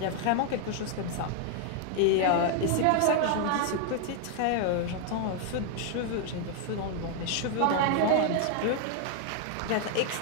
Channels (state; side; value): different; both; correlation 0.00